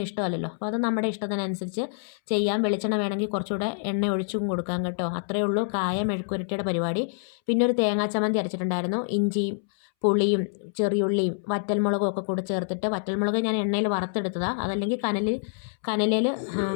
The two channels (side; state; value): right; silent; 61 dB below the other